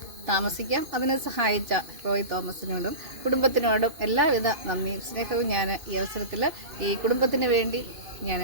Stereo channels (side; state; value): left; late; 2.5 ms